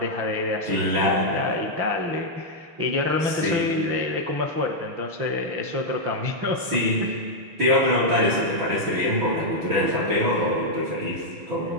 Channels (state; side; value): late; left; 6.1 ms